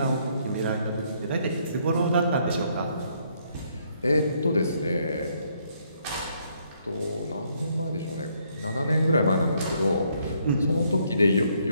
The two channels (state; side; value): inverted; both; correlation -0.70